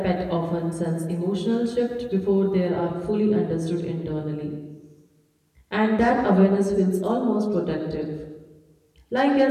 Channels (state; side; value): identical; both; correlation 1.00